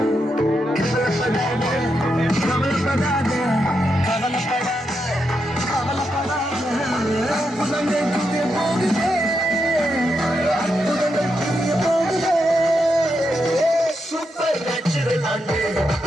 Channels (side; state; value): both; normal; correlation 0.83